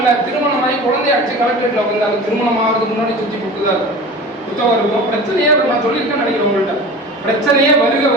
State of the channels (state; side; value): normal; both; correlation 0.36